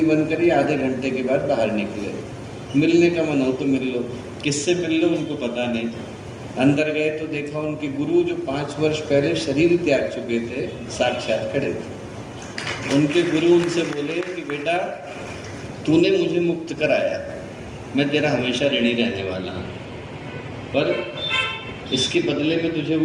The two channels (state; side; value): identical; both; correlation 1.00